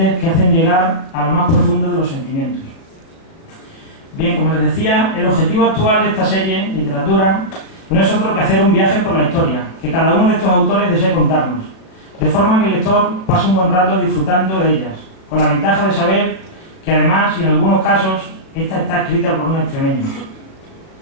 que hacen llegar a lo más profundo de los sentimientos. Bien, como les decía, el objetivo actual de esta serie, literatura, no es otro que hacer un viaje por la historia, que cada uno de estos autores desee contarnos, de forma que el lector pase un buen rato disfrutando de ellas, con la ventaja de saber que además, y en algunos casos, esta está escrita por un extremeño.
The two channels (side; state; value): right; late; 37 ms